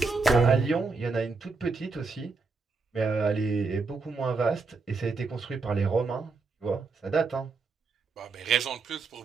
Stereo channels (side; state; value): left; quieter; 4.3 dB